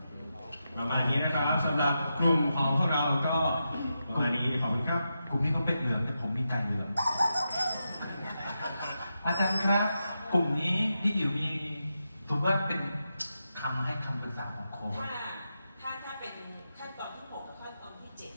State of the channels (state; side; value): inverted; both; correlation -0.87